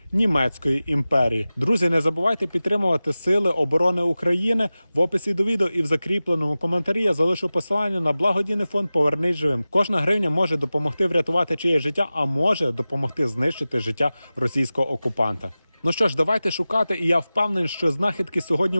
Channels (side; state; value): both; inverted; correlation -0.96